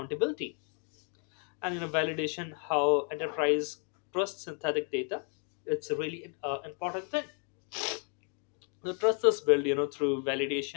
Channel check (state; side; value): quieter; right; 39.8 dB